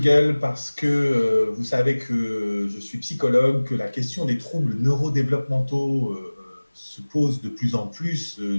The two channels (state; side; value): inverted; both; correlation -1.00